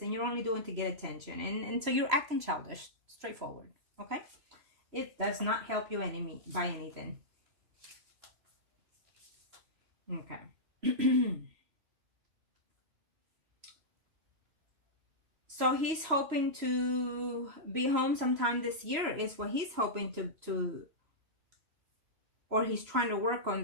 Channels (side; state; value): left; late; 3.0 ms